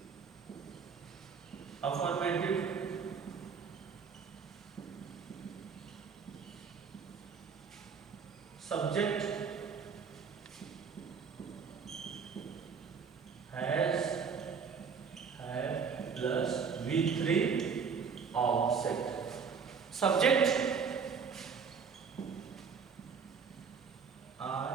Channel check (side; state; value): left; quieter; 6.0 dB